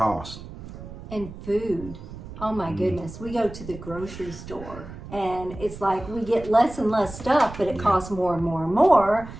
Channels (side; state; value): right; noise; rumble, 13 dB below the sound